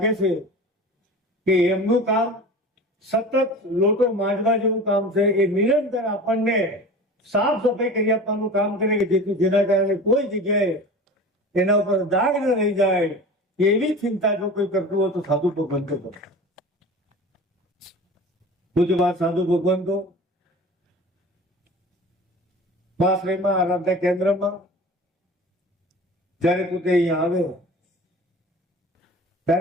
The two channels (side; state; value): both; normal; correlation 0.36